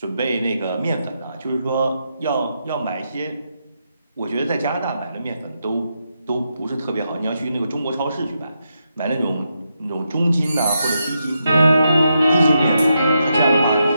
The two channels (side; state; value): both; inverted; correlation -0.83